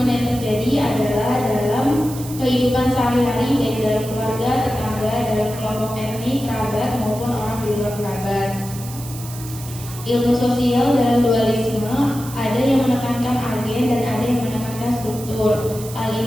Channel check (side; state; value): right; noise; hiss, 14 dB below the sound